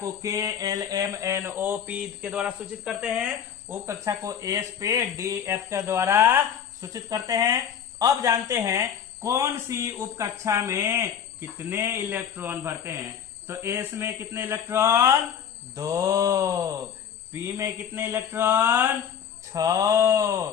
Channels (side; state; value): right; quieter; 8.3 dB